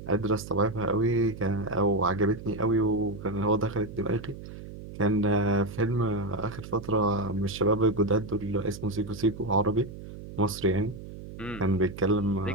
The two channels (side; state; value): right; noise; hum, 13 dB below the sound